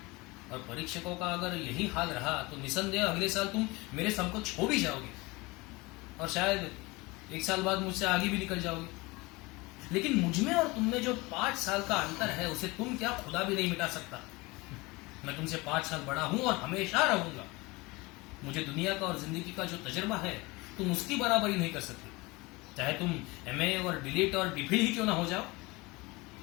और परीक्षकों का अगर यही हाल रहा तो निसंदेह अगले साल तुम मेरे समकक्ष हो भी जाओगे, और शायद 1 साल बाद मुझसे आगे भी निकल जाओगे। लेकिन मुझमें और तुममें जो 5 साल का अंतर है, उसे तुम क्या खुदा भी नहीं मिटा सकता। मैं तुमसे 5 साल बड़ा हूं और हमेशा रहूंगा। मुझे दुनिया का और जिंदगी का जो तजुर्बा है, तुम उसकी बराबरी नहीं कर सकते, चाहे तुम MA और डिलीट और डिफिल ही क्यों ना हो जाओ।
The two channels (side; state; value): right; quieter; 23.7 dB